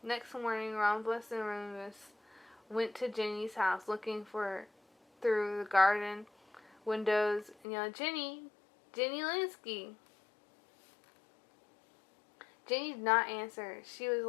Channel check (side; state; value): right; drops out; at 7.6 s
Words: Next morning, Rhombus and Remus went to Ginny's house looking for through the garden windows and yelled, Ginny! Ginny Linsky! Ginny did not answer. She was